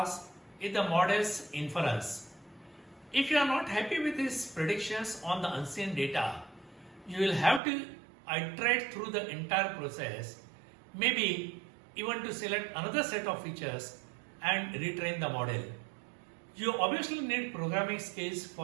is the model's inference. If you are not happy with these predictions on the unseen data, you will have to iterate through the entire process, maybe even to select another set of features and retrain the model. You obviously need programming skills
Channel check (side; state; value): left; drops out; at 7.6 s